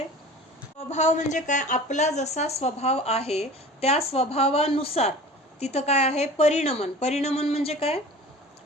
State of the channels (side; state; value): both; normal; correlation 0.41